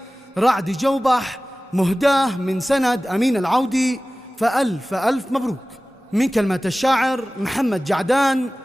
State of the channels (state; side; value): normal; both; correlation 0.97